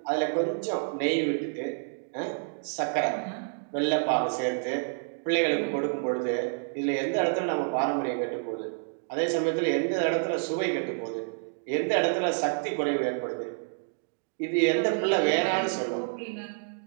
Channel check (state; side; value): silent; left; digital silence